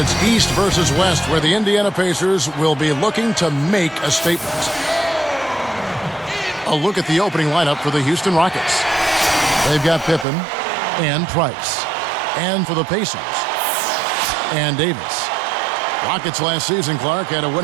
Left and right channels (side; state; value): left; drops out; at 10.2 s